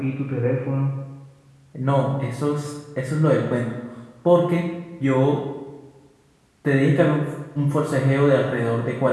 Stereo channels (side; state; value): both; identical; correlation 1.00